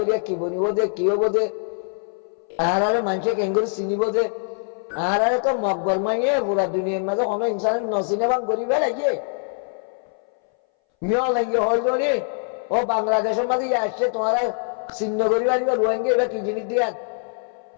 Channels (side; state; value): right; silent; 61 dB below the other